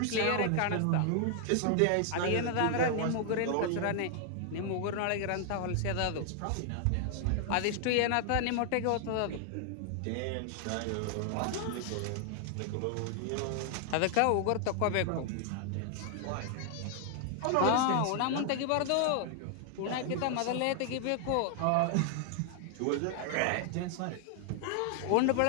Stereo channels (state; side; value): different; both; correlation 0.00